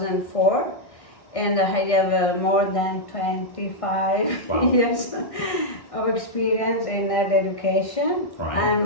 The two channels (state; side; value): late; right; 1.6 ms